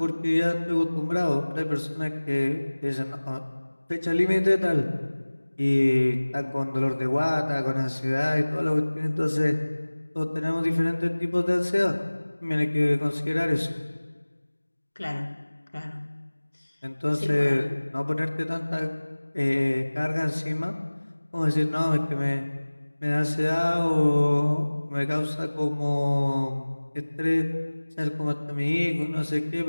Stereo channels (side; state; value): both; inverted; correlation -1.00